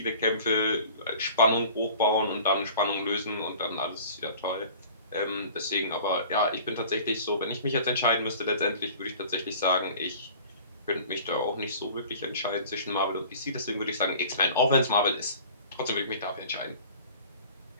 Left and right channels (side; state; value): both; inverted; correlation -0.45